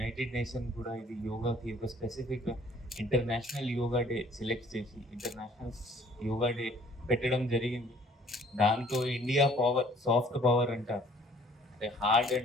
nation కూడా ఇది యోగాకి ఒక specific international yoga day select చేసి ఇంటర్నేషనల్ యోగా డే పెట్టడం జరిగింది. దాంతో ఇండియా పవర్ సాఫ్ట్ పవర్ అంటారు. అంటే హార్డ్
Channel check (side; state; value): both; normal; correlation 0.57